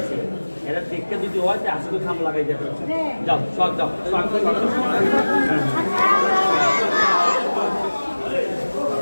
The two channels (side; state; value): both; inverted; correlation -1.00